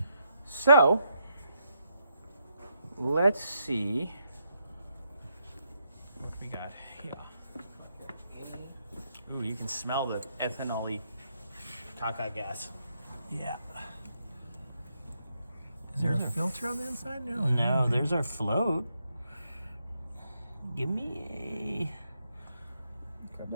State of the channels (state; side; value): inverted; both; correlation -0.79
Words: So, let's see what we got here. Ooh, you can smell the ethanol-y caca gas. Yeah. Is there a filter on the inside? No. No, there's our float. Give me a... Grab